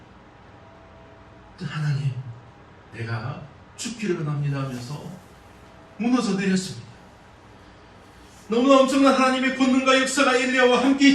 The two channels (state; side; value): identical; both; correlation 1.00